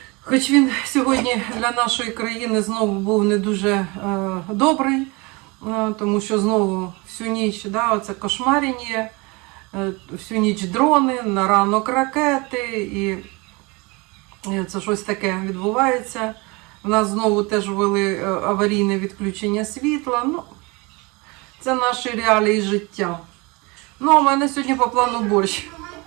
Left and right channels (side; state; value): left; quieter; 26.5 dB